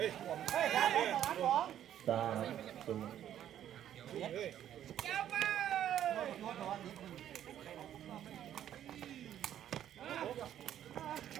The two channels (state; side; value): quieter; left; 10.9 dB